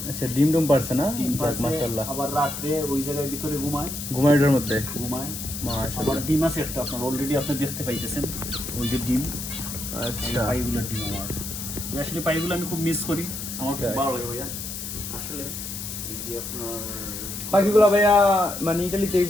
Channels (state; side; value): noise; left; hiss, 7 dB below the sound